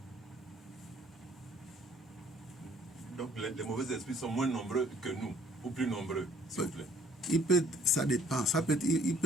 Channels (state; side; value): normal; both; correlation 0.59